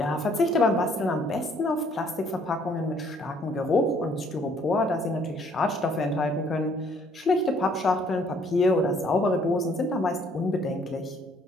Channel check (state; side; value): normal; both; correlation 0.63